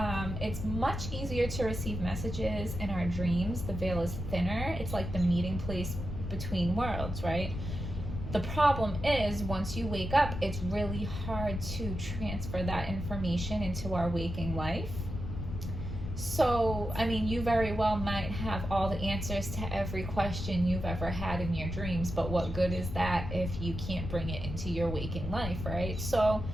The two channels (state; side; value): noise; left; rumble, 6 dB below the sound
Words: It's much easier to receive messages in our dreams. The veil is thinner. It's like the meeting place between worlds, right? The problem is, once you wake up, it's really hard to transfer that information into our waking life. So, you very well might have all the answers to every question you've ever had in your dreams, but what good is that if you can't bring it into your waking life, right? So,